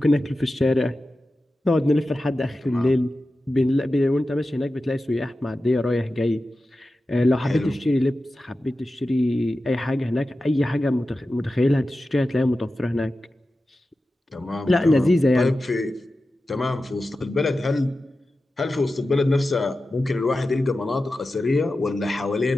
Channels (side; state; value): both; normal; correlation 0.93